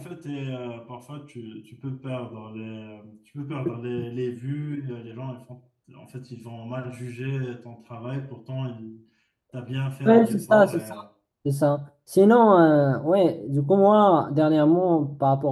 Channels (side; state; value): both; identical; correlation 1.00